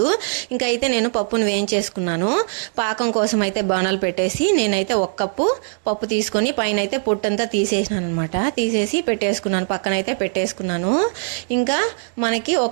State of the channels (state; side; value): silent; left; 65 dB below the other